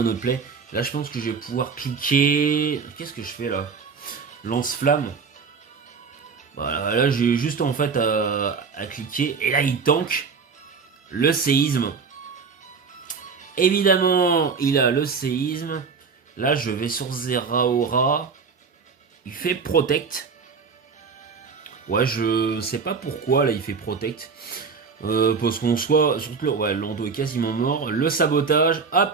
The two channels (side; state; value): left; quieter; 5.4 dB